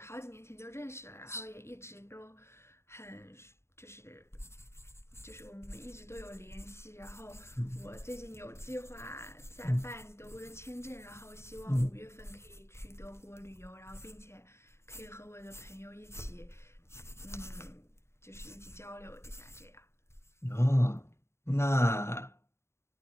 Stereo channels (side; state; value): right; late; 0.13 ms